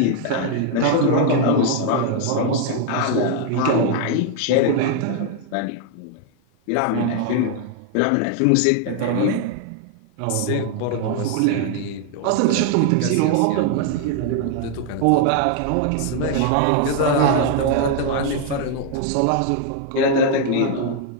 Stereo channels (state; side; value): different; both; correlation 0.00